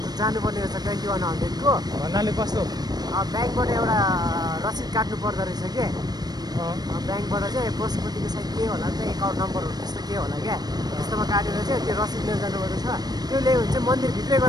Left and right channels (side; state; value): left; late; 0.19 ms